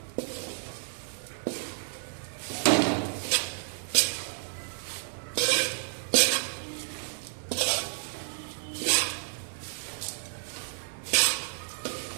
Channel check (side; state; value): left; silent; digital silence